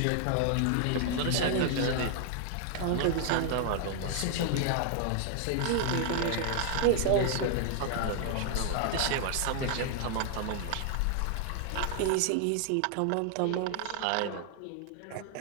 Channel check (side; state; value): both; different; correlation 0.00